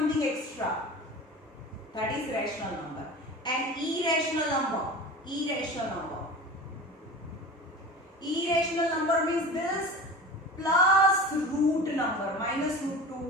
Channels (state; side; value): normal; both; correlation 0.34